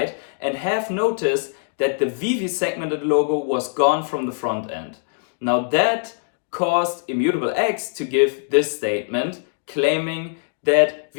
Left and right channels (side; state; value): right; silent; digital silence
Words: and have noticed that the Veve segmented logo was gone from the front end. Now that caused Immutable X to give this statement claiming that